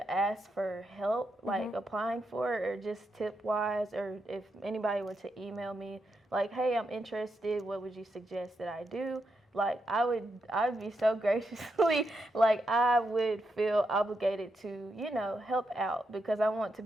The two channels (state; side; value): normal; both; correlation 0.83